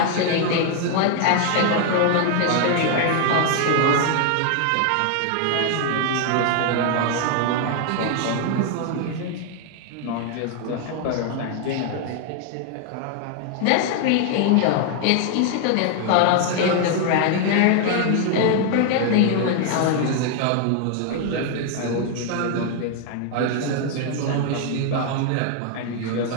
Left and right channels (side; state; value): both; different; correlation 0.00